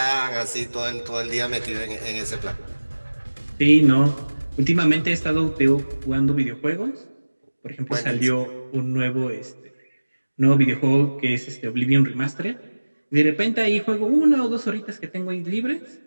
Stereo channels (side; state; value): both; inverted; correlation -1.00